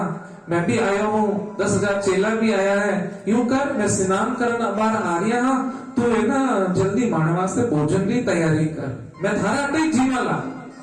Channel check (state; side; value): identical; both; correlation 1.00